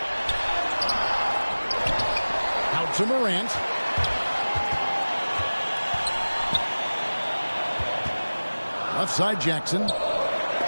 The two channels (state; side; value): inverted; both; correlation -1.00